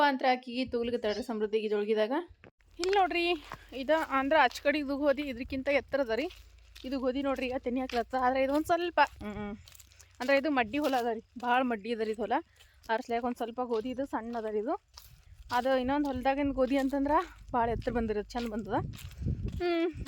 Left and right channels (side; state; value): both; identical; correlation 1.00